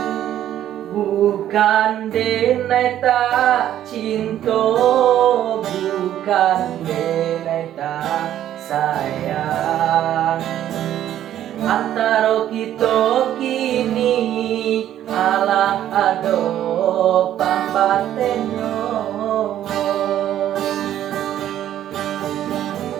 Bukan denai tak cinta, bukan denai tak sayang. Antara kita kini alah ado pambatenyo.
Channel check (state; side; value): quieter; left; 11.7 dB